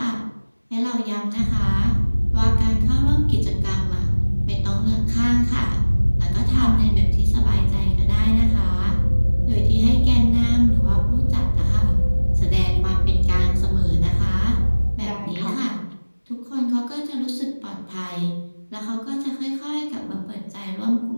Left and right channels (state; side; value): inverted; both; correlation -1.00